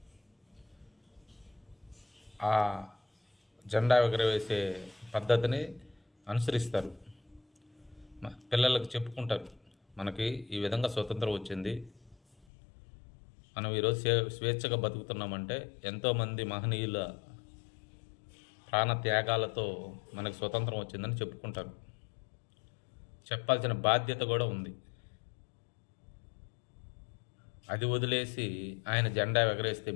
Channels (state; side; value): drops out; right; at 12.5 s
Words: ఆ జెండా ఎగరవేసే పద్ధతిని అనుసరిస్తారు. పిల్లలకు చెప్పుకుంటారు, మనకి ఈ విధంగా స్వతంత్రం వచ్చింది, మనం ఈరోజు స్వేచ్ఛగా బతుకుతున్నామంటే ఎంతోమంది మహనీయుల ప్రాణ త్యాగాలతో మనకు స్వతంత్రం వచ్చిందని చెప్పుకుంటారు. చెప్పాల్సిన బాధ్యత కూడా ఉంది. అది వదిలేసి ఆయన జెండా ఎగరేస్తే